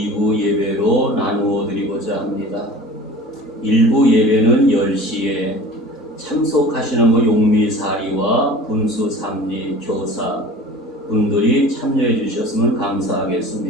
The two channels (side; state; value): both; normal; correlation 0.41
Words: 예배로 나누어 드리고자 합니다. 1부 예배는 10시에 참석하시는 용미사리와 분수 삼리 교사 분들이 참여해 주셨으면